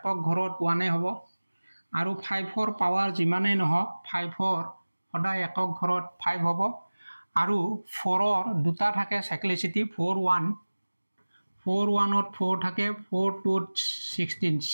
ঘৰত 1 হ'ব আৰু 5ৰ পাৱাৰ যিমানে নহওক 5ৰ সদায় একক ঘৰত 5 হ'ব আৰু 4ৰ দুটা থাকে সাইক্লিসিটি 41 ত 4 থাকে 4 টু 16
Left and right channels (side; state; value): both; inverted; correlation -1.00